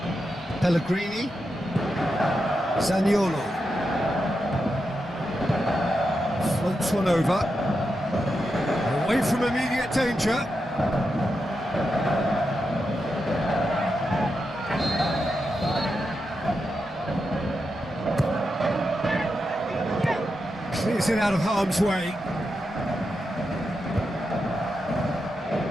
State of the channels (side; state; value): both; normal; correlation 0.87